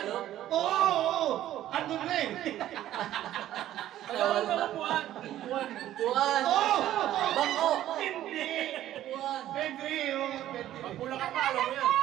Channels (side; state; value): left; quieter; 12.9 dB